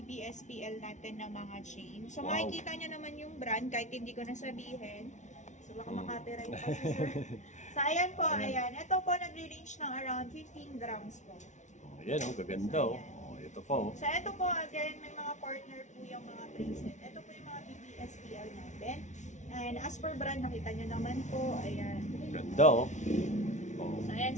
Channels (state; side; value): late; right; 0.35 ms